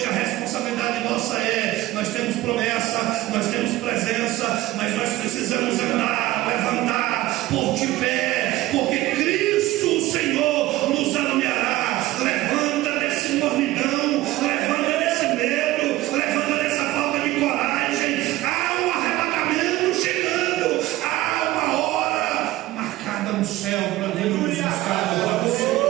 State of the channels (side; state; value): left; quieter; 16.9 dB